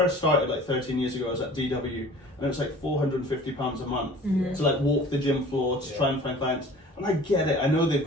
started like 13 years ago, I was at DW and it was like £450 a month to like walk the gym floor to try and find clients. And I get it. I know they've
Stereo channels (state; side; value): normal; both; correlation 0.45